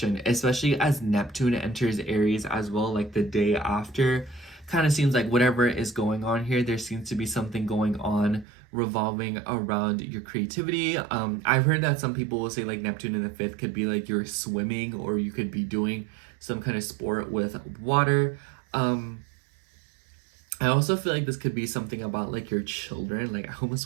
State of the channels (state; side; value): drops out; left; at 8.5 s